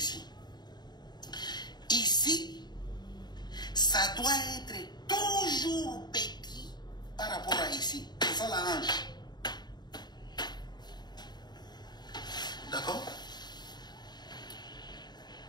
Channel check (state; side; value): late; right; 0.20 ms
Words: Ici, ça doit être toujours petit par rapport à ici. C'est ça la hanche. D'accord?